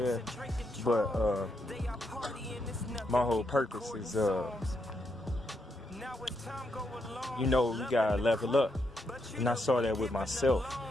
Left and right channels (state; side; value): normal; both; correlation 0.80